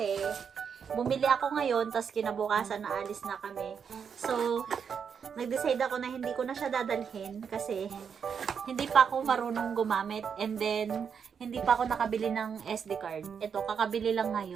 bumili ako ngayon, tapos kinabukasan naalis na kami. So, nag-decide ako na hindi ko na siya dadalhin kasi hindi pa ako marunong gumamit, and then hindi pa ako nakabili ng SD card. Ito, kakabili lang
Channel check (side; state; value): left; quieter; 6.9 dB